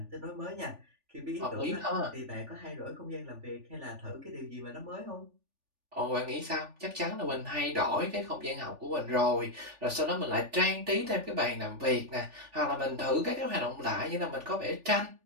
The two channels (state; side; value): late; left; 3.4 ms